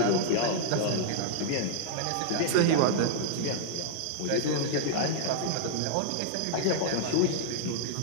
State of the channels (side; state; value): both; different; correlation -0.01